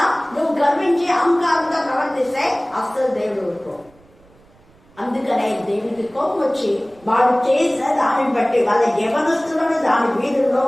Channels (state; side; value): noise; right; rumble, 29 dB below the sound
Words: నువ్వు గర్వించి అహంకారంగా ప్రవర్తిస్తే అస్సలు దేవుడు ఊరుకో. అందుకనే దేవుడికి కోపం వచ్చి వాడు చేసిన దానిని బట్టి వాళ్ళ యవనస్తులను దాని వీధుల్లో